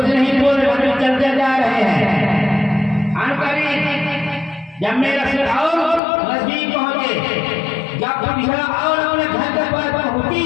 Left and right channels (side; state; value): right; drops out; at 6.0 s